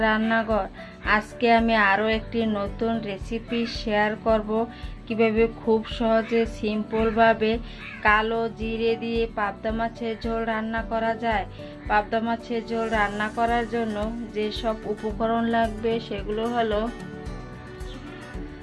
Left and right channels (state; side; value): identical; both; correlation 1.00